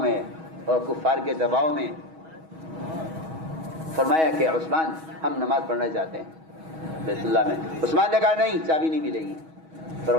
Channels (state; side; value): late; left; 6.3 ms